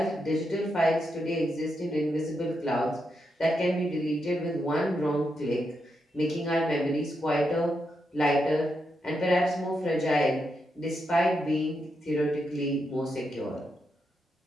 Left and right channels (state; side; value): normal; both; correlation 0.83